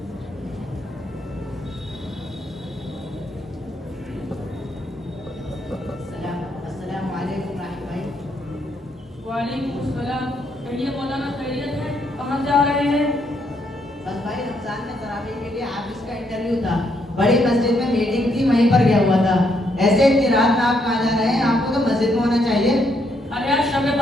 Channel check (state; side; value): normal; both; correlation 0.75